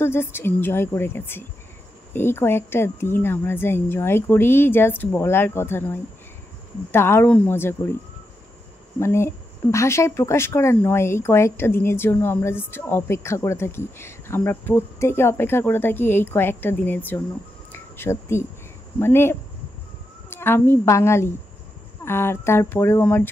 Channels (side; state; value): both; normal; correlation 0.85